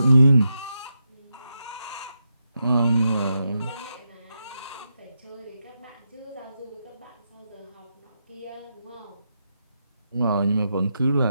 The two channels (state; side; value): inverted; both; correlation -0.84